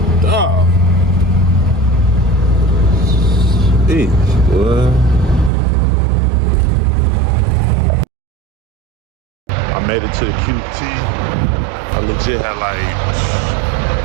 dog. Jeez, boy. I made it to the QT. I legit had like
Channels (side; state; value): left; drops out; at 5.5 s